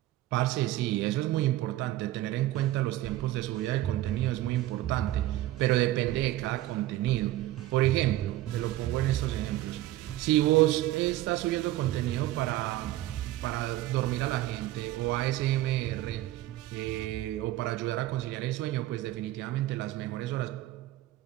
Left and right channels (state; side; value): quieter; left; 15.4 dB